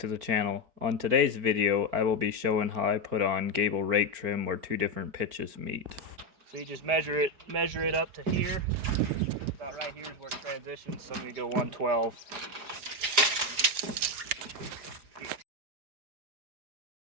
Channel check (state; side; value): late; left; 4.9 ms